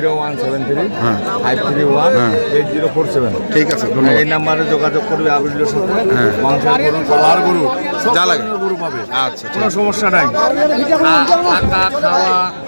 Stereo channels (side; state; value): both; inverted; correlation -1.00